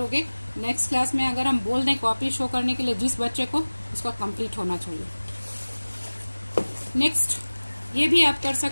नेक्स्ट क्लास में अगर हम बोल दें कॉपी शो करने के लिए जिस बच्चे को, उसका कंप्लीट होना चाहिए। नेक्स्ट ये भी आप कर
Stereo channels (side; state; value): both; inverted; correlation -1.00